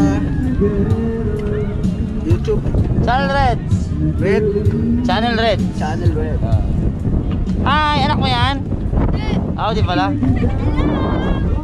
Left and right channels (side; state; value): both; identical; correlation 1.00